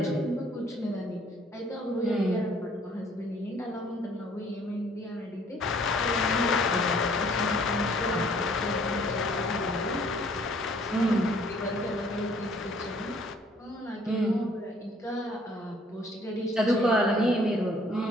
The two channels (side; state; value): both; normal; correlation 0.60